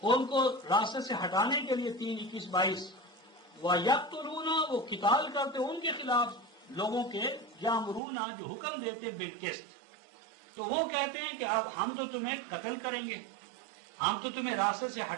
ان کو راستے سے ہٹانے کے لیے 3 21 22 وَيَقْتُلُونَ، وہ قتال کرتے ان کے خلاف لوگوں کے، یامرون جو حکم دیتے بالقسط، تو وہ کہتے ہیں کہ اب ہم تو تمہیں قتل کریں گے، ہم تو تمہیں راستے سے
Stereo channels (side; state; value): left; drops out; at 8.0 s